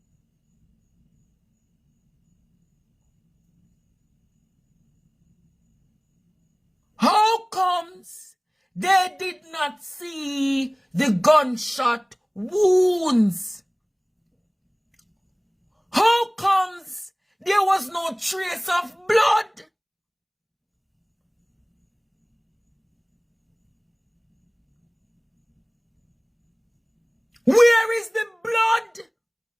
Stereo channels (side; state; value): both; identical; correlation 1.00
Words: How comes they did not see the gunshot wounds? How comes there was no trace of blood? Where is the blood?